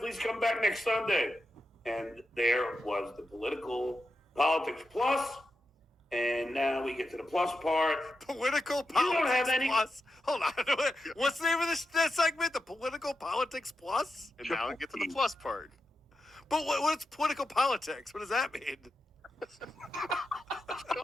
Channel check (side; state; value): both; normal; correlation 0.88